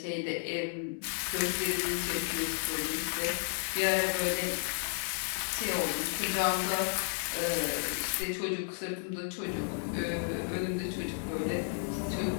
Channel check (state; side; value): silent; right; digital silence